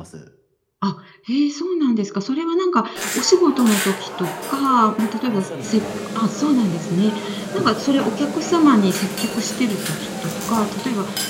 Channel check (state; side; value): identical; both; correlation 1.00